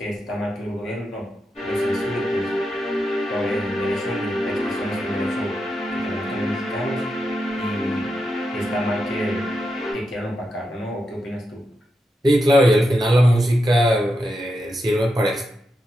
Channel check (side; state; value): both; normal; correlation 0.86